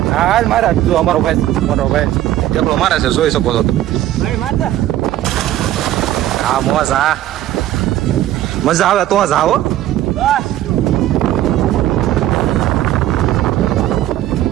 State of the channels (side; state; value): left; quieter; 13.5 dB